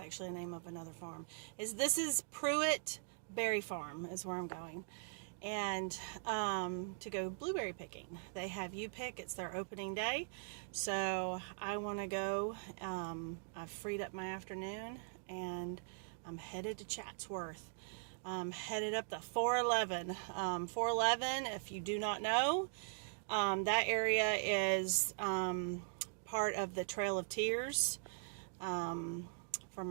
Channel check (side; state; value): left; silent; digital silence